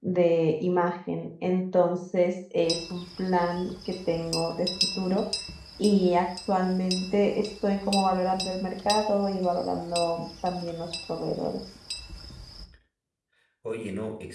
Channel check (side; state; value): both; identical; correlation 1.00